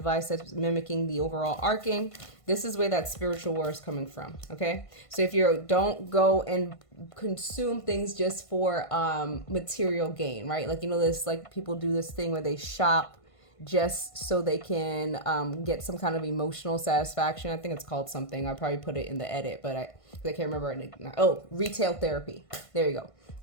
that's mimicking the overall arcing. This is where that spiritual war is coming from. Okay, so if you don't go and consume things just for material gain, right? Like, this, like, people do this thing where they shop just so they can get some kind of emotional satisfaction. I think it's called something. I'll probably put it in the edit, but I can't remember it. Oh, retail therapy. There you go.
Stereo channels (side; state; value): right; late; 1.5 ms